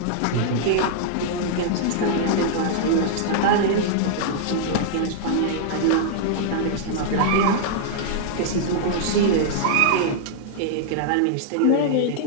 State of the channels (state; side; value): different; both; correlation -0.01